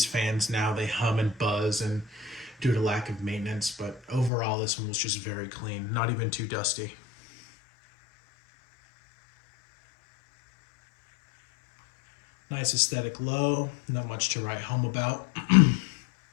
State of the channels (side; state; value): right; drops out; at 4.3 s